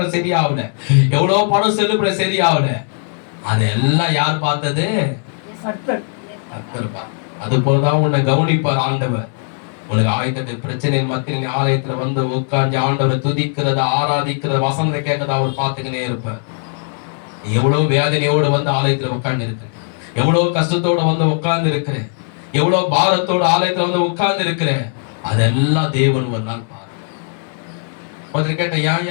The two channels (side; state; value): right; silent; 57 dB below the other